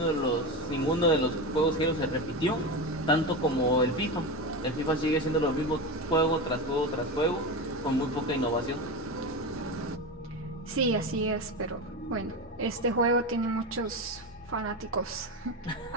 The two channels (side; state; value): both; normal; correlation 0.20